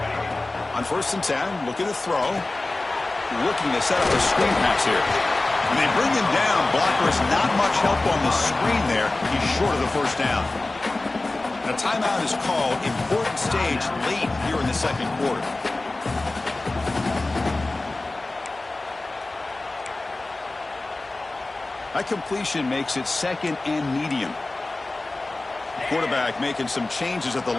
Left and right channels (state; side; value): quieter; right; 3.0 dB